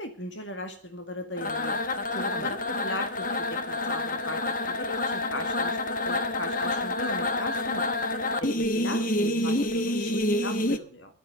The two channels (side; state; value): both; normal; correlation 0.01